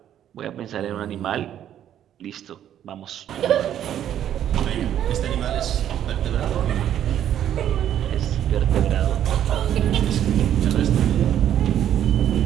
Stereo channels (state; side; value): quieter; left; 10.6 dB